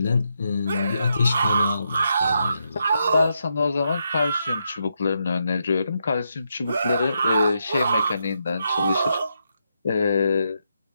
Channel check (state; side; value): inverted; both; correlation -0.81